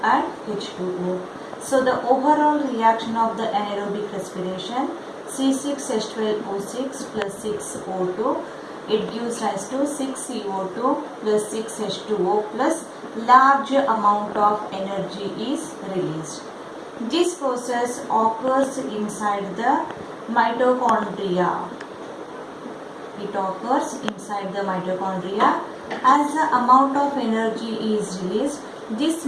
and H2O. So the overall reaction of the anaerobic respiration, C6H12O6 plus 6O2, it gives rise to 6CO2 plus 6H2O plus large amount of energy is released. This process occurs inside the mitochondria. It occurs inside the mitochondria. As the amount of energy is released, this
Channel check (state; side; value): identical; both; correlation 1.00